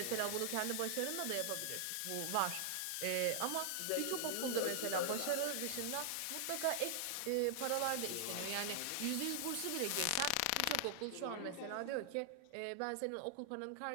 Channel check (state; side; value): different; both; correlation -0.01